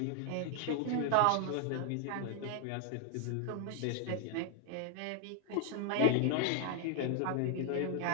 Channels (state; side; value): different; both; correlation 0.00